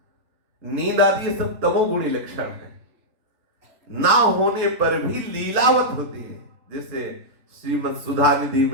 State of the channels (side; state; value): left; late; 3.2 ms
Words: नींद आदि ये सब तमोगुणी लक्षण है, ना होने पर भी लीलावत होती है। जैसे श्रीमद् सुधा निधि